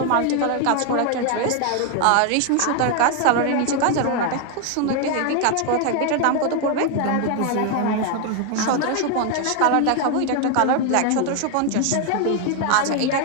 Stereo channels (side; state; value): both; different; correlation 0.01